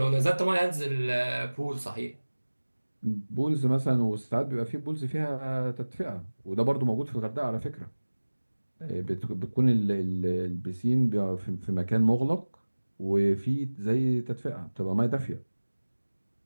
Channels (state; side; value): inverted; both; correlation -1.00